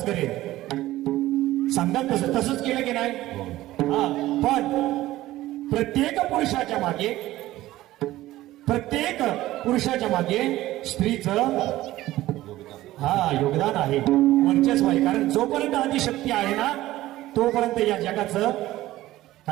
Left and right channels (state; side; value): quieter; left; 16.0 dB